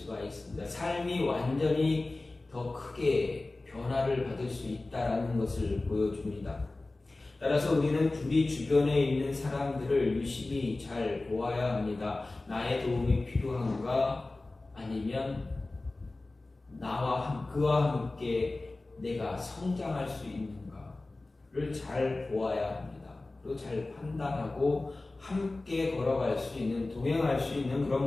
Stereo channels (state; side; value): quieter; right; 3.1 dB